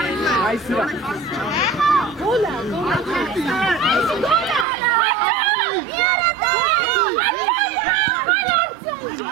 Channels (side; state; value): left; drops out; at 4.7 s